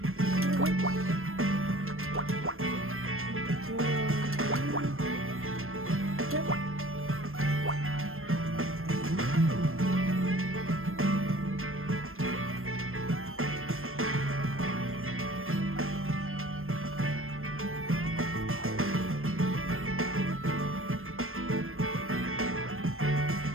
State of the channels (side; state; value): left; late; 0.61 ms